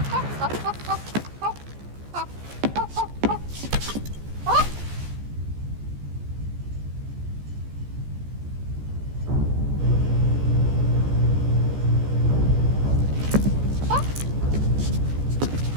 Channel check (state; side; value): late; left; 14 ms